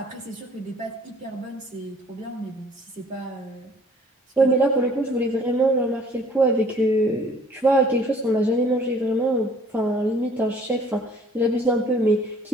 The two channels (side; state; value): both; normal; correlation 0.56